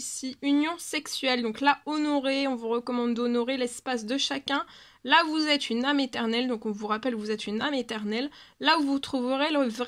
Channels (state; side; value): identical; both; correlation 1.00